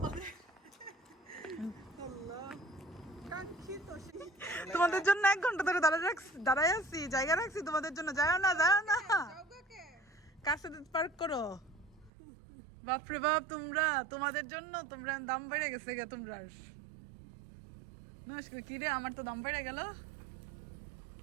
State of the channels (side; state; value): left; drops out; at 12.1 s